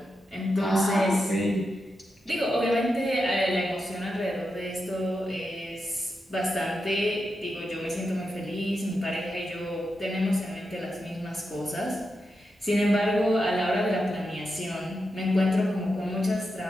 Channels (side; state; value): both; normal; correlation 0.87